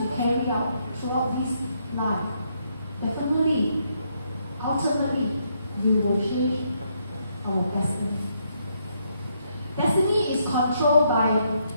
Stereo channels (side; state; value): both; inverted; correlation -0.75